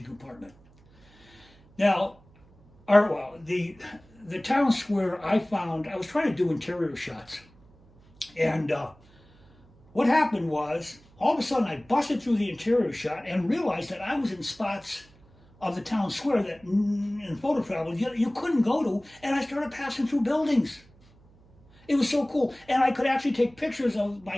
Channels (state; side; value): noise; right; hum, 28 dB below the sound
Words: compartment. Now, the town square I found, I was trying to do interior shots, and what happened was, all of a sudden I busted through the interior shot and realized that I was in spots of the town square that in photo travel you couldn't go to, and I started passing through buildings. It was so cool, and I could actually take pictures of my